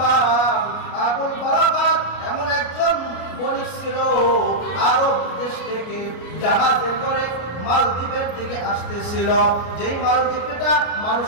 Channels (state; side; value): late; right; 33 ms